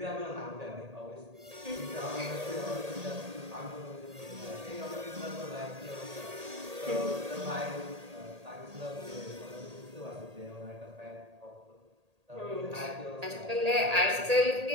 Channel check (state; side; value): late; left; 1.8 ms